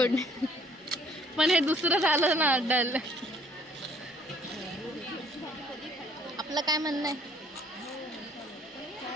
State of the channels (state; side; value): normal; both; correlation 0.59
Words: पण हे दुसरं झालं ना डल. आपलं काय म्हणणं आहे?